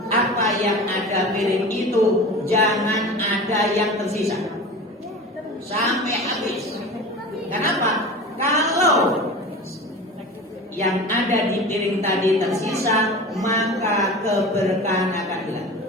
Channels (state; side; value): normal; both; correlation 0.34